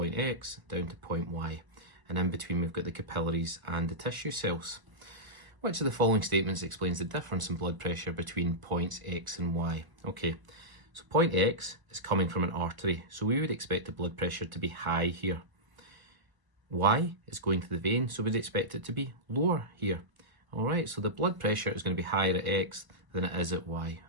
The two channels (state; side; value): late; left; 1.0 ms